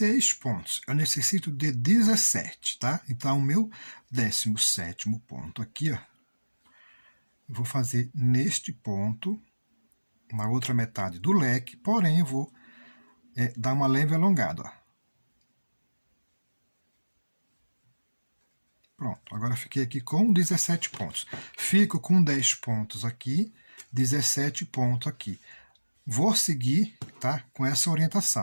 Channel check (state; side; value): inverted; both; correlation -1.00